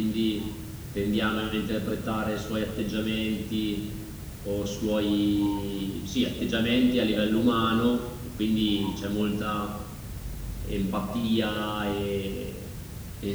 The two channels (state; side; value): identical; both; correlation 1.00